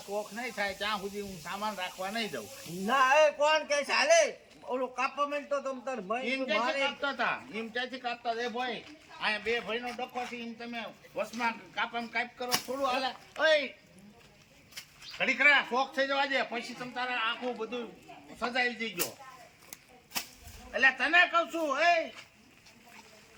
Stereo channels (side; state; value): both; identical; correlation 1.00